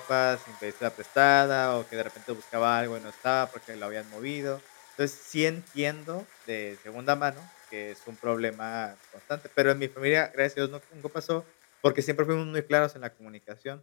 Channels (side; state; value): right; silent; digital silence